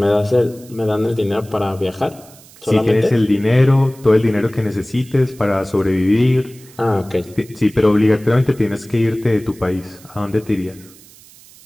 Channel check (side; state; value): right; noise; hiss, 24 dB below the sound